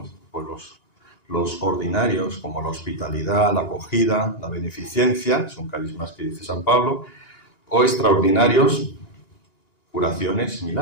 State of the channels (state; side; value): late; right; 1.9 ms